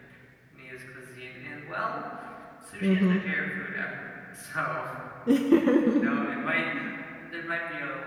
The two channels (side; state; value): both; identical; correlation 1.00